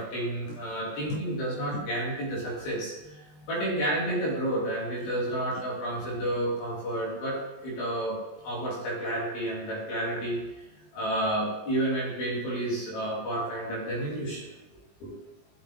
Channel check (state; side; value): late; right; 20 ms